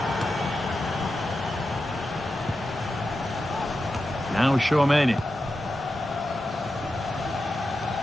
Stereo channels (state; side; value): normal; both; correlation 0.90